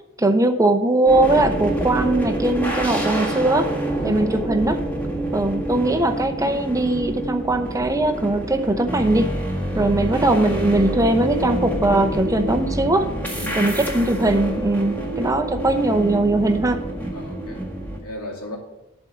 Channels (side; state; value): both; normal; correlation 0.65